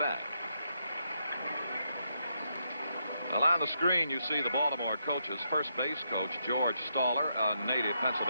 bat. Well, on the screen, you see the Baltimore coaches. First base coach George Staller, a native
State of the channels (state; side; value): inverted; both; correlation -0.80